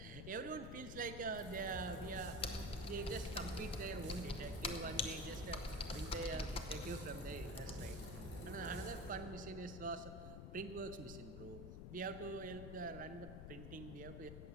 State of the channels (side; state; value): left; noise; rumble, 7 dB below the sound